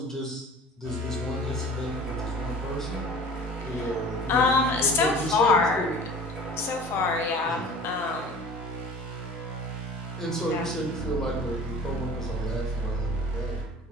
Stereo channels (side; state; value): both; normal; correlation 0.43